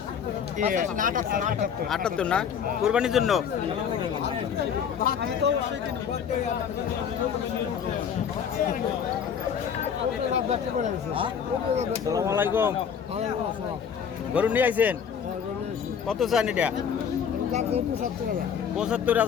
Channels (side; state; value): right; quieter; 7.6 dB